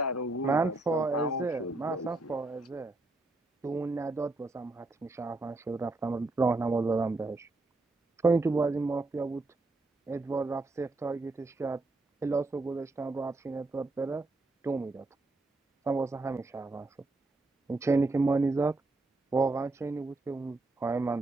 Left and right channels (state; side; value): quieter; left; 3.1 dB